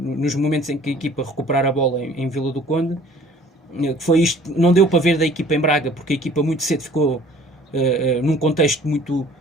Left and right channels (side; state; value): both; normal; correlation 0.52